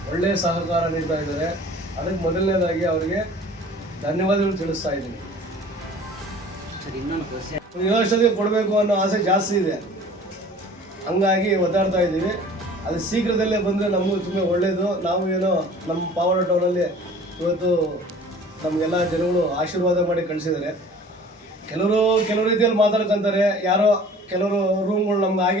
ಒಳ್ಳೆಯ ಸಹಕಾರ ನೀಡ್ತಾ ಇದ್ದಾರೆ. ಅದಕ್ಕೆ ಮೊದಲನೇದಾಗಿ ಅವರಿಗೆ ಧನ್ಯವಾದಗಳು ತಿಳಿಸ್ತಾ ಇದ್ದೀನಿ. ಯುವಶಕ್ತಿಗೆ ಕೊಡಬೇಕು ಅನ್ನೋ ಆಸೆ ಜಾಸ್ತಿ ಇದೆ, ಹಂಗಾಗಿ ಒದ್ದಾಡ್ತಾ ಇದ್ದೀವಿ. ಅದು ಶೀಘ್ರದಲ್ಲೇ ಬಂದರೆ ನಮಗೂ ತುಂಬ ಒಳ್ಳೆಯದು. ನಾವು ಏನೋ ನಮ್ಮ ಪಾವಗಡ ಟೌನಲ್ಲಿ ಇವತ್ತು ನಮಗೆಲ್ಲ ಜನಗಳು ಆಶೀರ್ವಾದ ಮಾಡಿ ಕಳಿಸಿದ್ದಾರೆ. ಕೆಲವು ರೀತಿಯಲ್ಲಿ ಮಾತಾಡ್ಕೊತಾರೆ, ಯಾರೋ ಕೆಲವರು ರೂಮ್ಗಳು ನಮ್ಗೆ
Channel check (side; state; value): both; normal; correlation 0.47